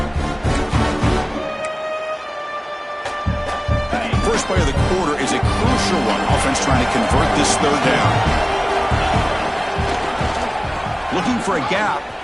First play of the quarter is a crucial one. Offense trying to convert this third down. Looking for a gap,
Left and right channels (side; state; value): both; identical; correlation 1.00